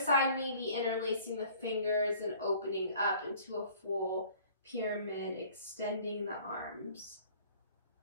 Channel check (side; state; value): both; inverted; correlation -0.52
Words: side, maybe interlacing the fingers and opening up into a full pyramid, extending the arms.